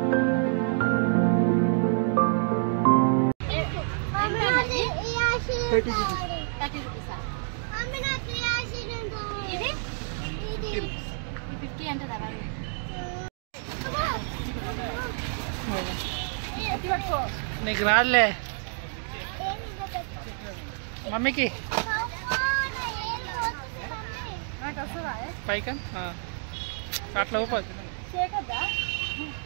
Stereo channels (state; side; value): silent; left; 59 dB below the other